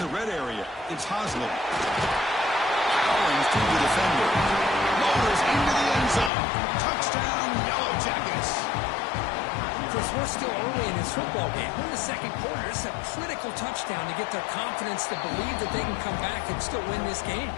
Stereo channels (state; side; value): drops out; right; at 6.3 s